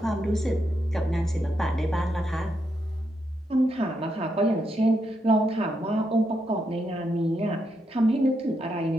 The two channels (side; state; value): both; normal; correlation 0.81